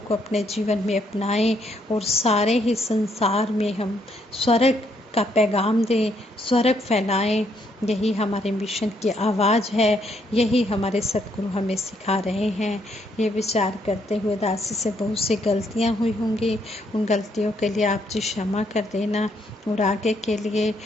अपने जीवन में अपनाएं और सारे ही संसार में हम स्वर्ग का पैगाम दें, स्वर्ग फैलाएं। यही हमारे मिशन की आवाज़ है, यही हमारे सतगुरु हमें सिखा रहे हैं। ये विचार करते हुए दासी से बहुत सी गलतियां हुई होंगी, उन गलतियों के लिए आप जी क्षमा कर देना और आगे के लिए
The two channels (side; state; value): both; normal; correlation 0.73